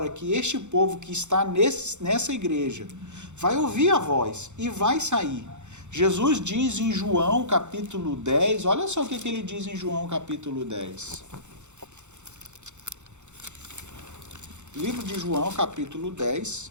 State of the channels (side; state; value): left; late; 0.84 ms